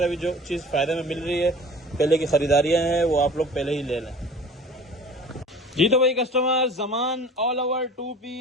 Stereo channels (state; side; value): normal; both; correlation 0.43